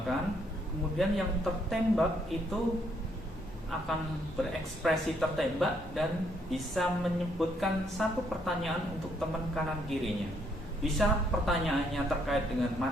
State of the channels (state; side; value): normal; both; correlation 0.71